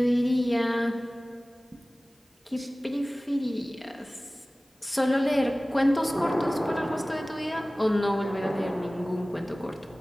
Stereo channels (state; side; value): normal; both; correlation 0.98